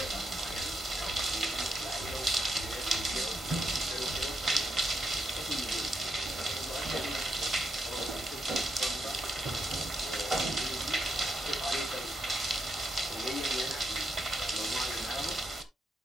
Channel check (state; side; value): normal; both; correlation 0.79